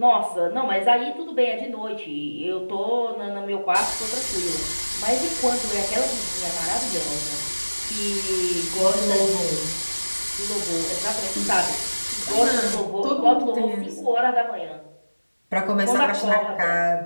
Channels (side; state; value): both; inverted; correlation -1.00